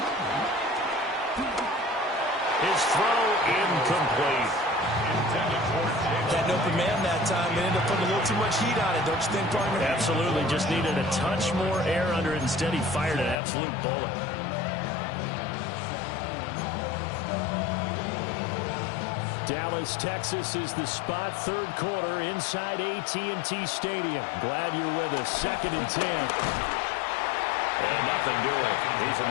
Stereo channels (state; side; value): drops out; right; at 13.4 s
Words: His throw incomplete. Had an open man that time and ended up putting a little too much heat on it, don't you think, partner? Absolutely. Just needed a touch more air under it. Instead, he fired an absolute bullet. Dallas, Texas is the spot. 3rd quarter inside AT&T Stadium. Glad you're with us. 2nd and 10. And nothing doing. He's